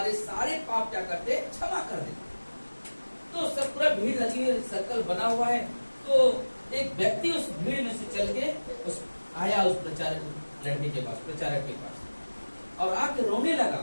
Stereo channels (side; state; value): both; inverted; correlation -1.00